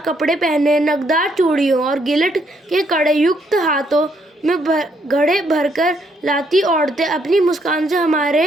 कपड़े पहने, नगदार चूड़ियों और गिलट के कड़े युक्त हाथों में घड़े भरकर लाती औरतें अपनी मुस्कान से हमारे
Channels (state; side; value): normal; both; correlation 0.72